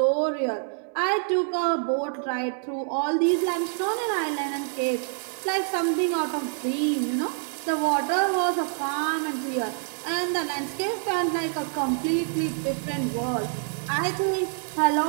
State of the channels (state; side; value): silent; left; 59 dB below the other